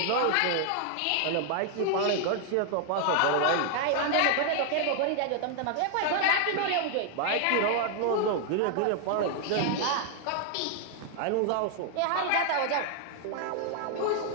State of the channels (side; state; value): both; different; correlation 0.00